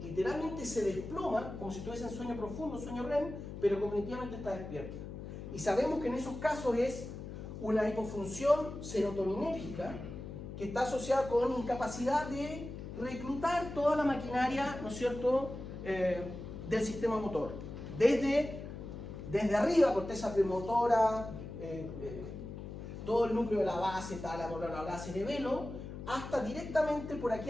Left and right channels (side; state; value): left; noise; hum, 9 dB below the sound